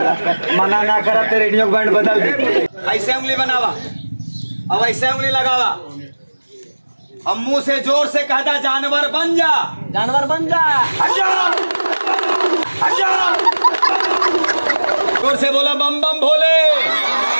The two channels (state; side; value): inverted; both; correlation -1.00